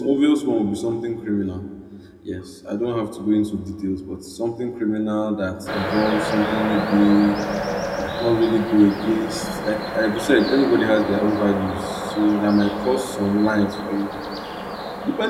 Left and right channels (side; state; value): both; identical; correlation 1.00